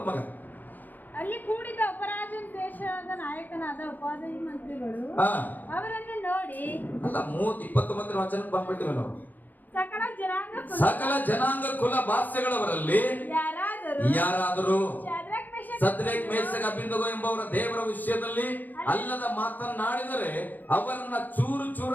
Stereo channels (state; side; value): late; right; 0.085 ms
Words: ಮಗ. ಅಲ್ಲಿ ಕೂಡಿದ ಅಪರಾಜನ ದೇಶದ ನಾಯಕನಾದ ಉಪಾಧ್ಯಾಯ ಮಂತ್ರಿಗಳು ಅವರನ್ನು ನೋಡಿ, ಅಲ್ಲ 29 ವಚನಕ್ಕೆ ಬಂದ್ಬಿಟ್ಟಿವೆ ನಾವು. ಸಕಲ ಜನಾಂಗ ಕುಲ ಭಾಷೆಗಳವರಲ್ಲಿ ಯಾರಾದರೂ ಸದ್ರೇಕ್ ಮೇಷಕ್ ಅಬೇದ್ನೆಗೋ ಎಂಬವರ ದೇವರ ವಿಷಯದಲ್ಲಿ ಅಲ್ಲದ ಮಾತನಾಡಿದರೆ ಅವರನ್ನ ಚೂರು